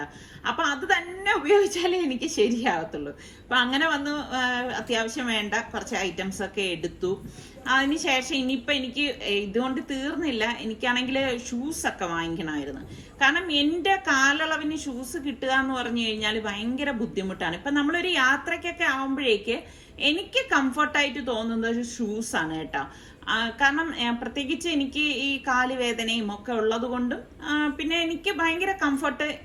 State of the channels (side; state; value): both; identical; correlation 1.00